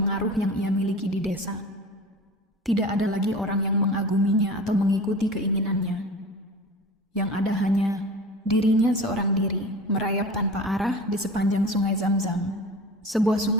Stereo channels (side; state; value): both; normal; correlation 0.36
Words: yang ia miliki di desa. Tidak ada lagi orang yang mengaguminya atau mengikuti keinginannya. yang ada hanya dirinya seorang diri merayap tanpa arah di sepanjang sungai Zam-Zam. Sebuah